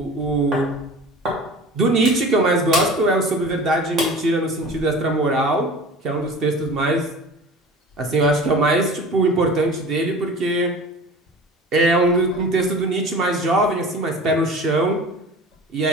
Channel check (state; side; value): normal; both; correlation 0.39